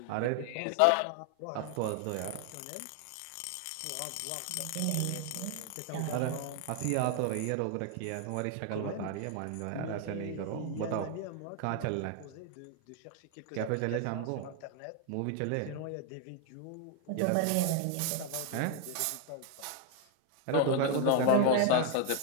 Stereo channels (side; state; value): both; different; correlation 0.00